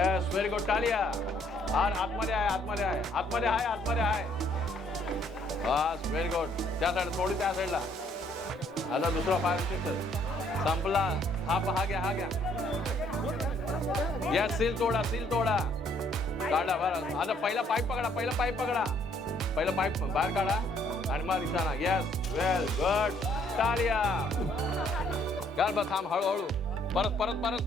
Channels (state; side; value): normal; both; correlation 0.65